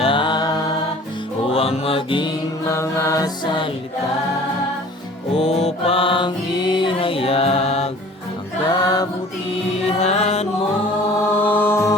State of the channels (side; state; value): both; normal; correlation 0.47